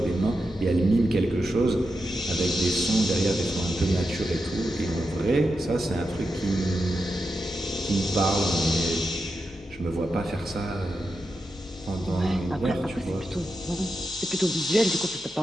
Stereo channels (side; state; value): both; normal; correlation 0.87